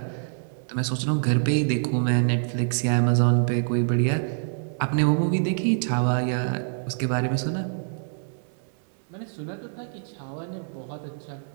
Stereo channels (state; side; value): silent; left; digital silence